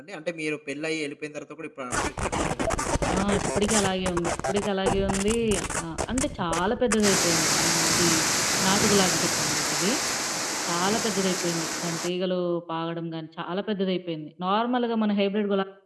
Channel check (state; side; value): identical; both; correlation 1.00